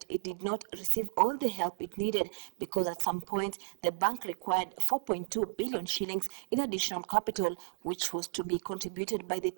it did not receive all the help it needed because at some point the bank required 4.2 billion shillings in additional capital, which was to be contributed by the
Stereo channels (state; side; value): silent; left; digital silence